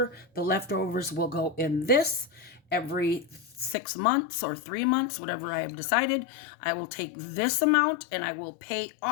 the leftovers will go in this. Every 6 months or 3 months, whatever I have decided, I will take this amount and I will pay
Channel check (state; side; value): drops out; right; at 3.8 s